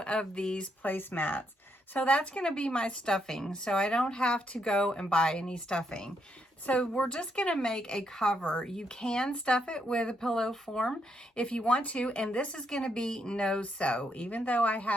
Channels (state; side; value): normal; both; correlation 0.77